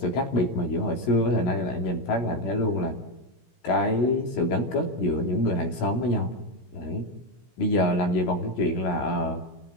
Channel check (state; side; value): late; right; 17 ms